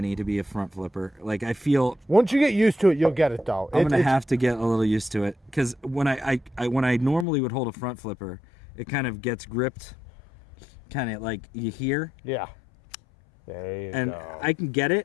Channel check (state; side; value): drops out; right; at 7.2 s